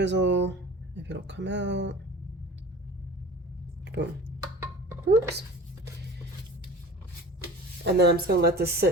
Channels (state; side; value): normal; both; correlation 0.40